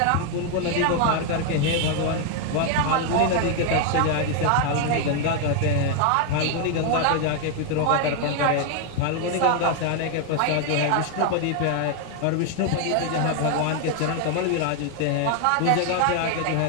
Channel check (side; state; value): both; different; correlation 0.00